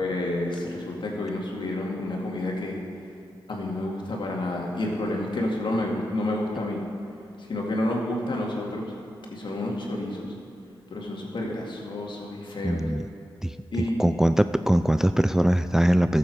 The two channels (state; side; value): normal; both; correlation 0.91